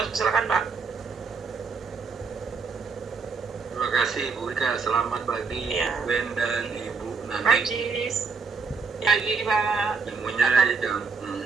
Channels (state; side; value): quieter; left; 5.1 dB